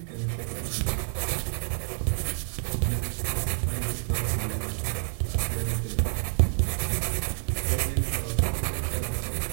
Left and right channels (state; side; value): silent; left; digital silence